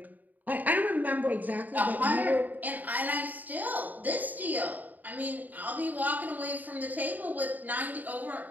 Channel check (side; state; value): left; late; 0.083 ms